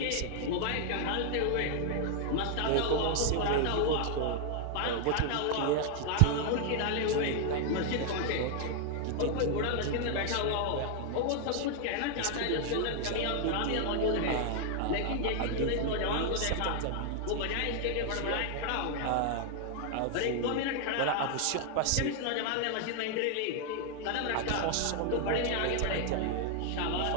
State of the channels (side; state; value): both; different; correlation 0.00